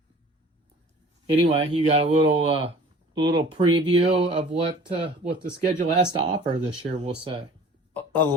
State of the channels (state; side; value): normal; both; correlation 0.46